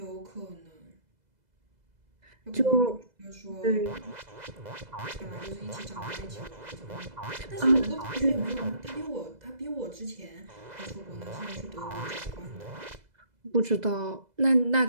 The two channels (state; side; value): late; left; 2.0 ms